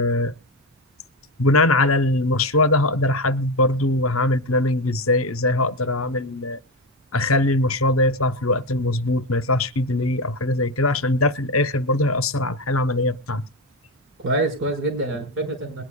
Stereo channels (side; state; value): both; normal; correlation 0.14